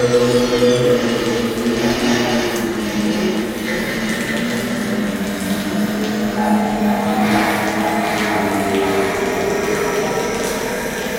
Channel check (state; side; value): identical; both; correlation 1.00